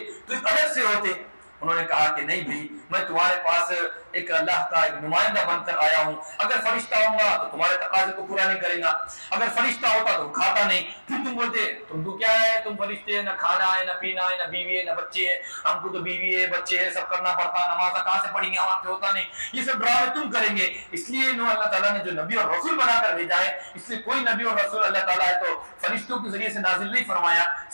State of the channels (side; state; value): both; inverted; correlation -1.00